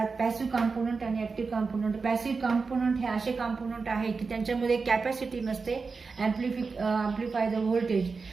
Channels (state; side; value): quieter; left; 4.6 dB